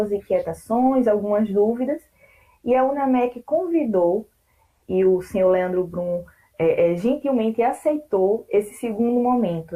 inquietações, algumas dúvidas, e a UNAMEC convidou, e o senhor Leandro Brum gentilmente aceitou esse segundo momento,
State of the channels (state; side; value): identical; both; correlation 1.00